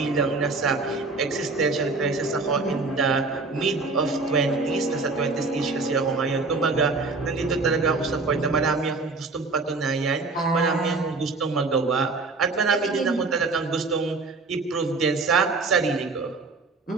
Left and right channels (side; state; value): left; quieter; 3.8 dB